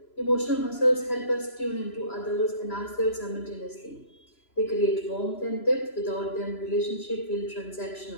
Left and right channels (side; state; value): right; late; 3.0 ms